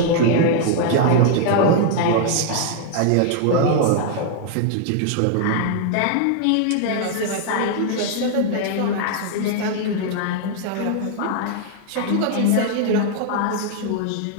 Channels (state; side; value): different; both; correlation 0.00